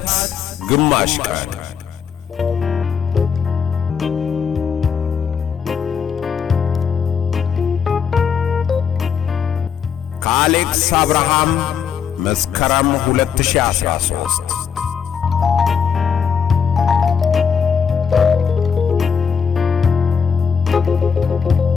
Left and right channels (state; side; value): quieter; right; 6.9 dB